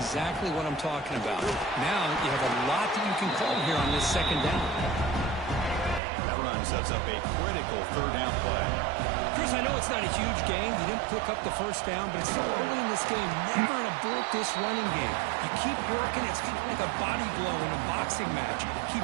what I'm talking about. Now you have a lot that you can call here on this 2nd down. That run sets up a critical 3rd down play. Chris, I know it's not a huge game. You didn't pick up the 1st down, but it's so early in this game. Never abort this running game. You keep working. It's kind of like a body blow in a boxing match.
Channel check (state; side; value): drops out; left; at 6.0 s